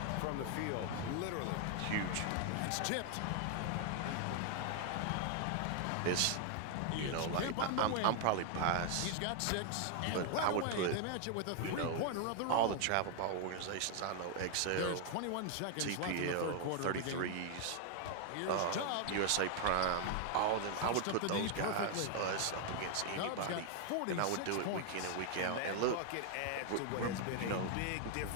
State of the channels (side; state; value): both; different; correlation 0.00